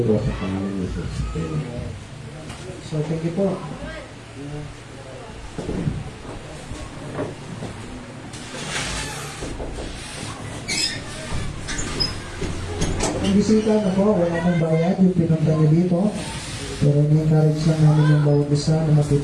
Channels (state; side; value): identical; both; correlation 1.00